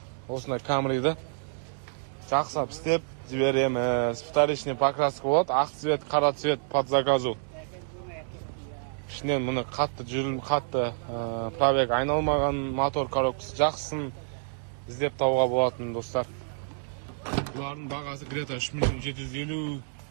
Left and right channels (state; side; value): silent; left; digital silence